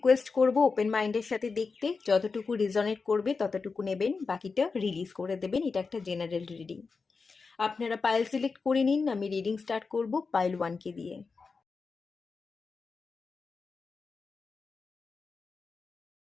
করব ওপেন মাইন্ডের সাথে দেখতে, যতটুকু রিজনেট করবে ততটুকু নেবেন, বাকিটা রিলিজ করে দেবেন। এটা একটা জেনারেল রিডিং। আপনারা পাইল সিলেক্ট করে নিন, আমি রিডিং স্টার্ট করব পাইল 1কে দিয়ে।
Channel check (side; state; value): right; quieter; 4.6 dB